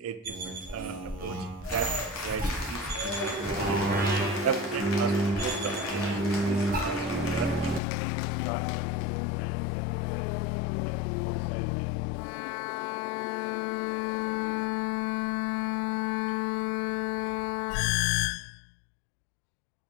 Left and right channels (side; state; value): right; drops out; at 7.8 s